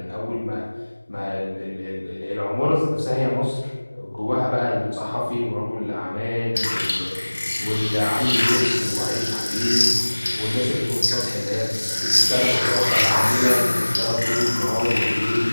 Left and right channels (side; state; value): both; inverted; correlation -1.00